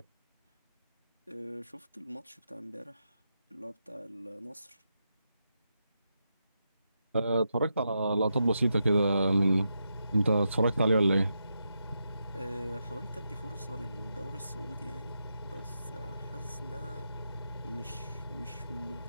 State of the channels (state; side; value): inverted; both; correlation -0.85